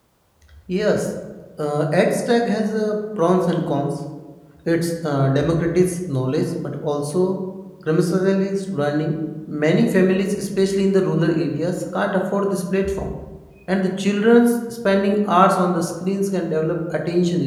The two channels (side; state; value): both; identical; correlation 1.00